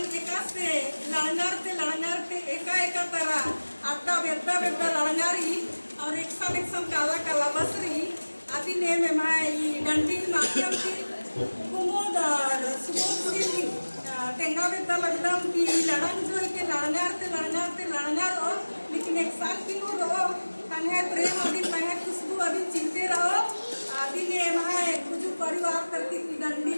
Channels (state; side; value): inverted; both; correlation -1.00